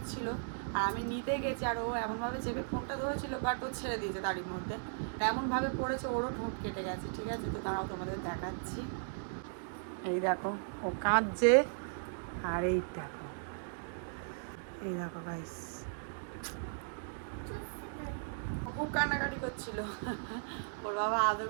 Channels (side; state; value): left; silent; digital silence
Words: আর আমি নিতে গেছি, আর ও এমনভাবে চেপে ফোনটা ধরেছিল, বাট ও ছেড়ে দিয়েছে তারই মধ্যে, এমনভাবে পড়েছে ওরও ঠোঁট কেটে গেছে, ঠিক আছে। তো তারাও তোমাদের দেখাচ্ছি, এই দেখো ও কাঁদছে, আর এই দেখো, এই দেখো গাইস খুব কান্নাকাটি করছিল, ওর বাবা আদর